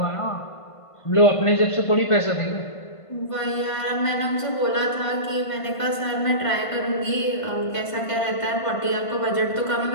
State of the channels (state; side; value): late; right; 1.5 ms